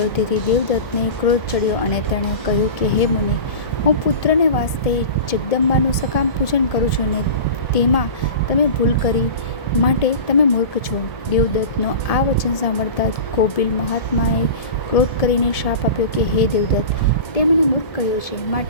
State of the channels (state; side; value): late; right; 1.7 ms